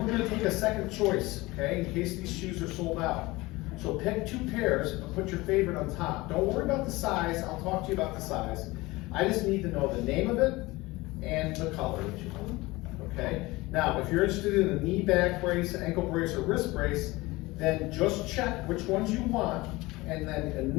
we're gonna take a second choice, okay, in case these shoes are sold out. So pick 2 pairs and put your favorite on top. Don't worry about the size, I'll talk to you about the size. I just need to know the name of it and the color that you want, okay? Now, if you're interested in a knee, back brace, ankle brace, or wrist brace, then just check which ones you want, and then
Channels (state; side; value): quieter; right; 21.2 dB